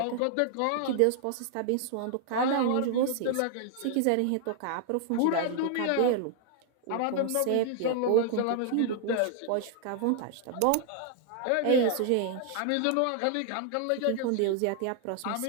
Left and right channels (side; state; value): both; different; correlation 0.00